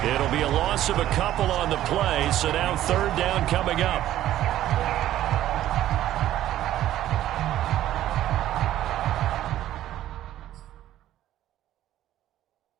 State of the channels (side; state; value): left; quieter; 13.1 dB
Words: It'll be a loss of a couple on the play, so now 3rd down coming up.